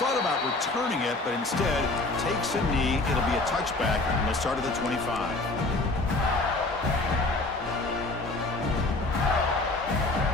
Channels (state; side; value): quieter; right; 3.0 dB